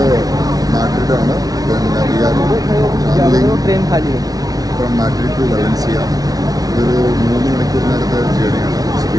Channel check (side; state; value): left; late; 0.18 ms